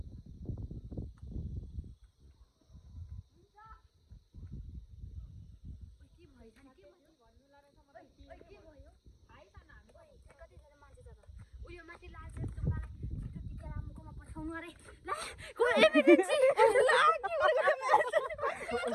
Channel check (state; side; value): identical; both; correlation 1.00